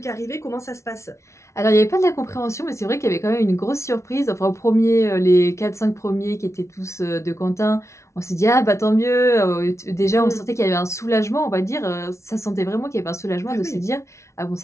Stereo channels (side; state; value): right; late; 0.14 ms